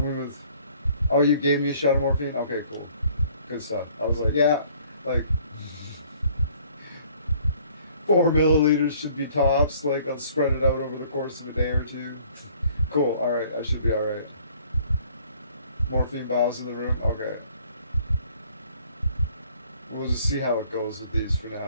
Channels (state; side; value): inverted; both; correlation -0.58